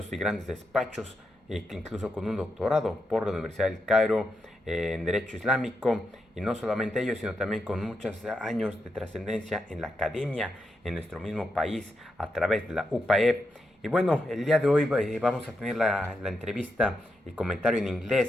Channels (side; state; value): both; normal; correlation 0.85